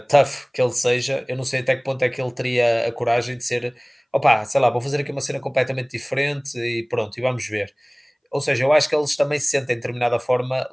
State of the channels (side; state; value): both; identical; correlation 1.00